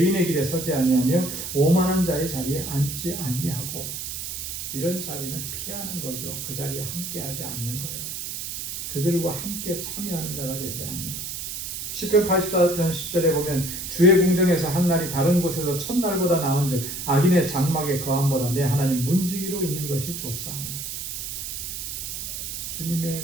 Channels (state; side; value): noise; right; hiss, 6 dB below the sound